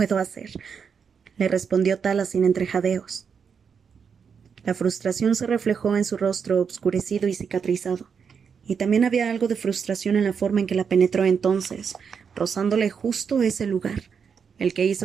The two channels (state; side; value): quieter; left; 6.5 dB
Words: hacer, le respondió Tala sin entrejadeos. La frustración se reflejó en su rostro obscurecido y cicatrizado, y también había algo de frustración en la forma en que la penetró entonces, rozándole justo ese lugar, el que